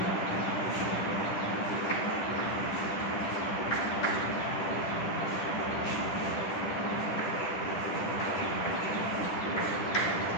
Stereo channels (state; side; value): late; right; 10 ms